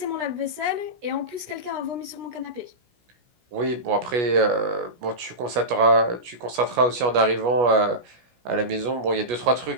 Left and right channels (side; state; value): left; late; 17 ms